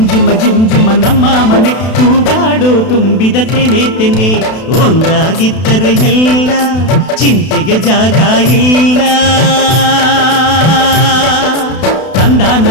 ಜುಮ ಜುಮ್ ಜುಮ ನಮ್ಮ ಮನೆ. ತೂಗಾಡೋ ತುಂಬಿದ ತೆನೆ ತೆನೆ, ಒಂದಾಗಿದ್ದರೆ ಎಲ್ಲ ಚಿಂತೆಗೆ ಜಾಗ ಇಲ್ಲ.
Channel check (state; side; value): late; right; 32 ms